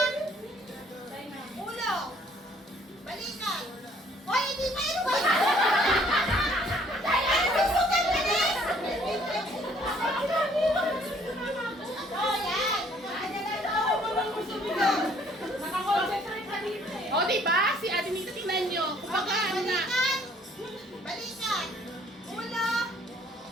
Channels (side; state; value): both; normal; correlation 0.61